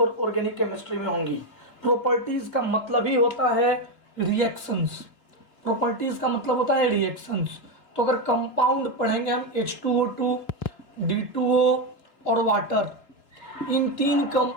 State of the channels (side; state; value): right; late; 3.1 ms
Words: ऑर्गेनिक केमिस्ट्री में होंगी। प्रॉपर्टीज का मतलब ही होता है रिएक्शंस। प्रॉपर्टीज का मतलब होता है रिएक्शंस। तो अगर कंपाउंड पढ़ेंगे हम H2O2, D2O और वाटर, इन 3